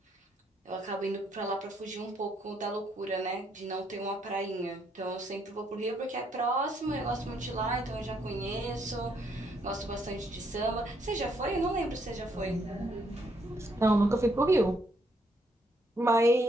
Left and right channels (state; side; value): normal; both; correlation 0.72